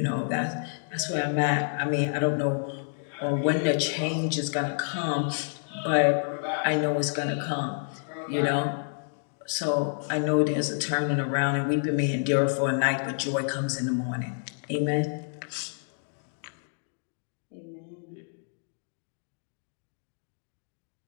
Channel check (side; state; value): right; silent; digital silence